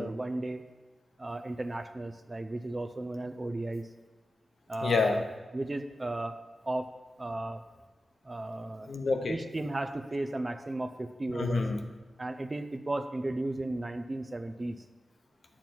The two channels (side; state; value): both; normal; correlation 0.91